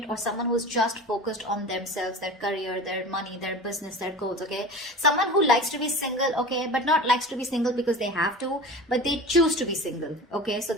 or someone who's just focused on themselves, their career, their money, their business, their goals, okay? Someone who likes to be single, okay, but not likes to be single because they have to, but they choose to be single, okay? So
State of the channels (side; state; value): both; normal; correlation 0.34